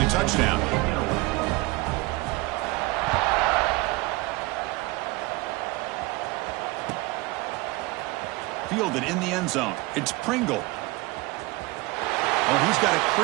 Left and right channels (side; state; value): left; quieter; 21.9 dB